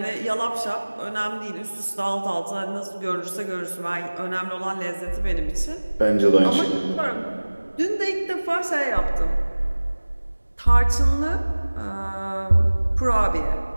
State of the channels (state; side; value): inverted; both; correlation -1.00